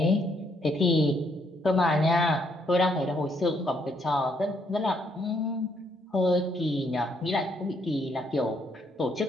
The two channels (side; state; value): both; normal; correlation 0.72